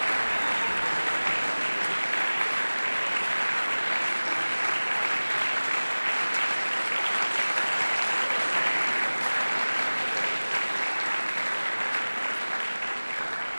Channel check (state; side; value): inverted; both; correlation -1.00